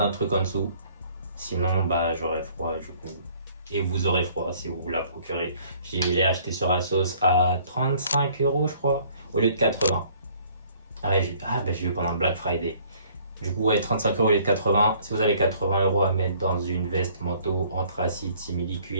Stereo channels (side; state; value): both; inverted; correlation -0.58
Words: un truc en dessous. Sinon, bah, j'aurai froid du coup. Et vous aurez froid si vous la procurez. Je l'ai acheté sur Asos à 35 €, je crois, au lieu de 80. Ah, bah, j'ai eu pendant le Black Friday. Du coup, ouais, 35 € au lieu de 80. Si vous avez 80 € à mettre dans une veste manteau anthracite simili